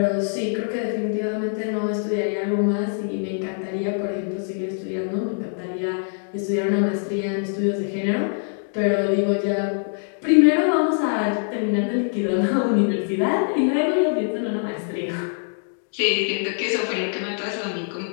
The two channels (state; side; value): silent; right; 63 dB below the other